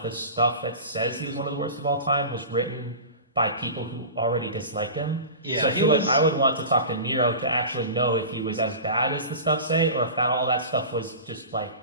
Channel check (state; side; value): inverted; both; correlation -0.32